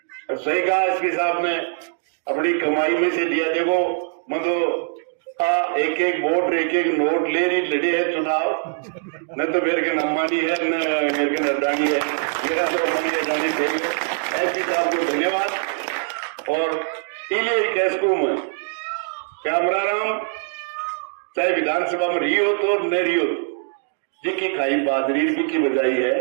और सही कहा एसपी साहब ने, अपनी कमाई में से दिया। देखो मतलब एक एक वोट एक एक नोट ले रही लड़े है चुनाव, न तो मेरे के नम्मानी है न मेरे के नरदानी है, मेरा तो मनी जानी चाहिए। एसपी साहब को धन्यवाद। और इले कैसको में कैमराराम चाहे विधानसभा में रही हो तो न रही हो, जिसकी खाई बादरी की बजाई है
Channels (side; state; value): left; silent; digital silence